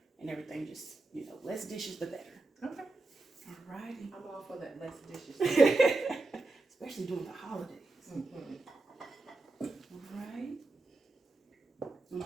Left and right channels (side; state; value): left; quieter; 3.1 dB